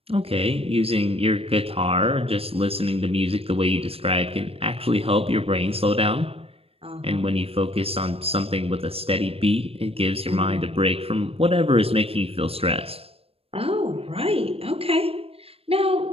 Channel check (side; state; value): left; late; 0.28 ms